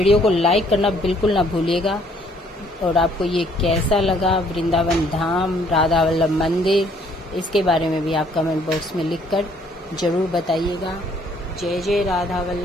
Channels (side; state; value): both; normal; correlation 0.63